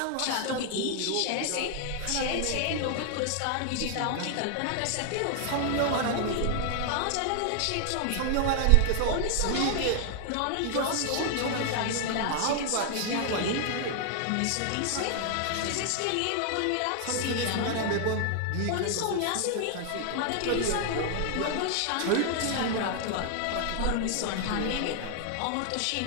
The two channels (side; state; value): both; different; correlation 0.00